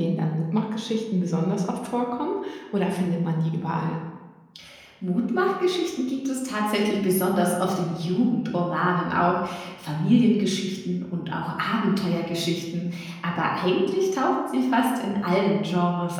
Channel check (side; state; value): both; identical; correlation 1.00